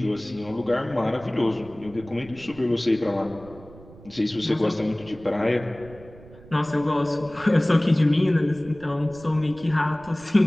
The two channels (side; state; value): right; noise; rumble, 20 dB below the sound